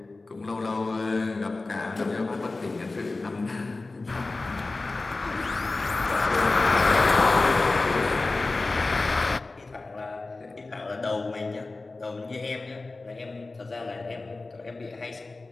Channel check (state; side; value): quieter; right; 3.4 dB